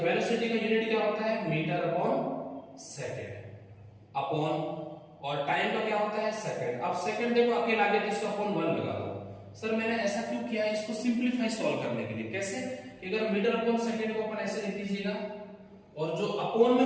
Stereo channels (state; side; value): identical; both; correlation 1.00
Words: वेलोसिटी का यूनिट क्या होता है, मीटर अपॉन सेकंड अपॉन, और टाइम का क्या होता है, सेकंड। अब सेकंड देखो अकेला आगे तो इसका अपॉन 1 लगा दो। सर मैंने ऐसा क्यों किया है, इसको सिंपलीफाई सॉल्व करने के लिए। कैसे कि अगर मीटर अपॉन सेकंड को अपन ऐसे लिख दीजिएगा और जो अपॉन